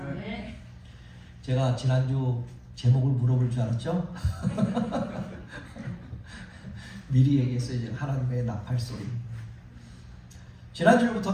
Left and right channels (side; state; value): both; identical; correlation 1.00